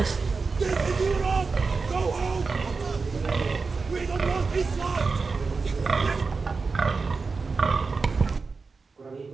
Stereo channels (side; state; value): left; quieter; 4.5 dB